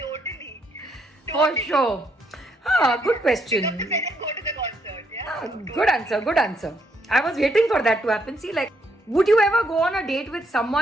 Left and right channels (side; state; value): both; normal; correlation 0.73